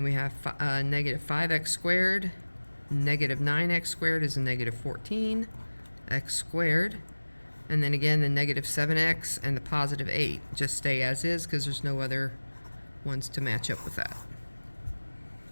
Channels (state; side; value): inverted; both; correlation -1.00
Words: we have negative 5x squared. Negative 9x squared is a negative 14x squared. And then again, the negative 7x and the positive 8 just stay as is because there's no other ones to match up with that.